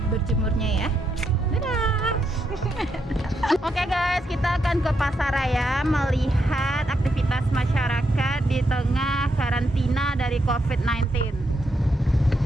berjemurnya ya. Dadah. Oke guys, kita akan ke Pasaraya melihat aktivitas masyarakat di tengah karantina dari COVID-19.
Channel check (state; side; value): normal; both; correlation 0.80